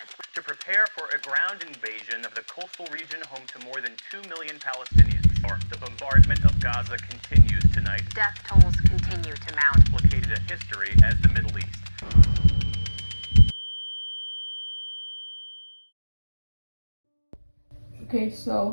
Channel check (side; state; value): both; inverted; correlation -1.00